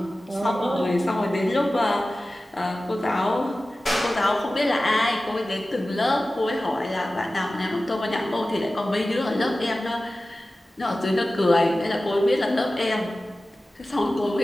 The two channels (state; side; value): normal; both; correlation 0.96